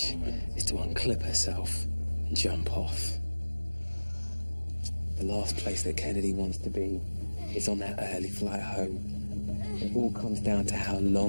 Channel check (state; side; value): inverted; both; correlation -1.00